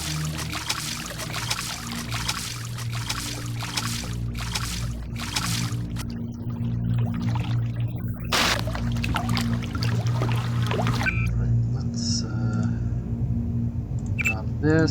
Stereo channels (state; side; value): identical; both; correlation 1.00